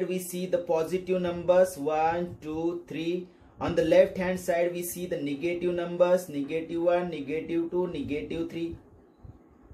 we see the positive numbers 1, 2, 3. On the left hand side we see the negative numbers -1, -2, -3.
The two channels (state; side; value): identical; both; correlation 1.00